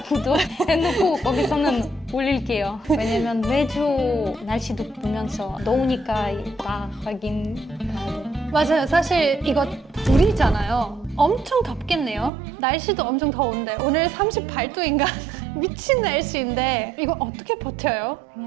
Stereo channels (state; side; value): drops out; left; at 12.3 s